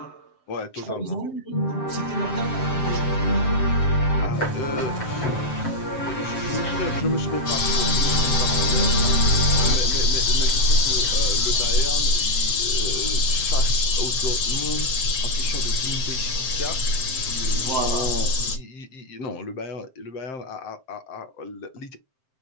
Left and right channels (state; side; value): late; right; 7.7 ms